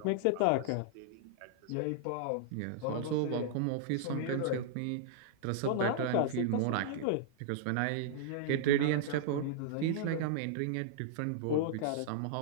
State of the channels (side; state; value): both; different; correlation -0.01